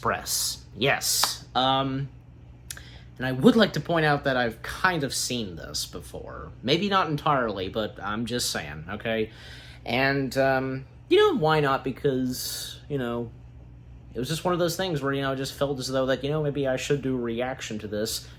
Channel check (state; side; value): identical; both; correlation 1.00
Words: Yes. And I would like to point out that I've kind of seen this before. Maybe not entirely, but I'm just saying, okay? And, why not? Because, it was just one of those things where, I just felt as though that, maybe I should do a reaction to this,